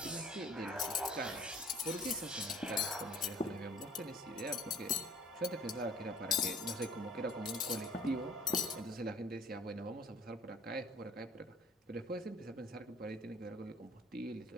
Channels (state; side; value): normal; both; correlation 0.53